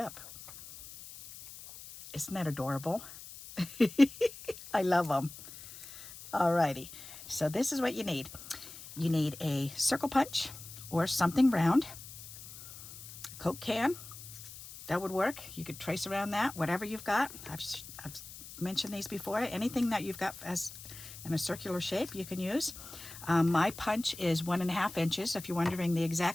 Isn't that adorable? I love them. Alrighty, so this is what you need. You need a circle punch or something round. Coke can, that would work. You could trace around that, whatever you've got. I've mentioned these before. Anything that you've got as in a circular shape you can use. My punch is 1.5 inches. If you're wondering the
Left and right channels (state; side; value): noise; left; hiss, 14 dB below the sound